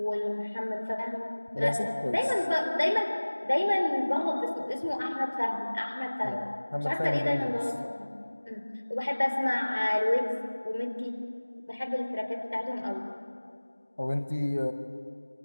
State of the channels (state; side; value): inverted; both; correlation -1.00